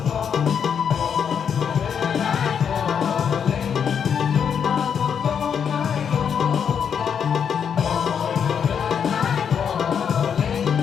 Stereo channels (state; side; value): quieter; right; 7.5 dB